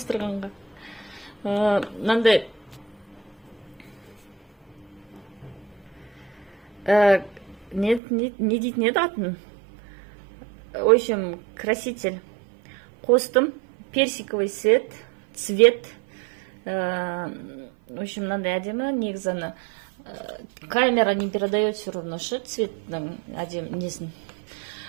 Мынандай не дейтін еді атын? В общем, краситель. Қостым. Персиковый цвет. В общем, надо әдемі. Негізі камера не передает все равно цветтің әдемі несін.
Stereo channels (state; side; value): drops out; left; at 8.0 s